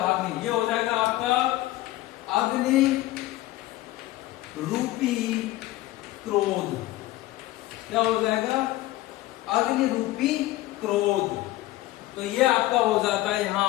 ये हो जाएगा आपका अग्नि रूपी क्रोध। क्या हो जाएगा? अग्नि रूपी क्रोध। तो ये आपका हो जाता है, यहां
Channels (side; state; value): right; quieter; 16.7 dB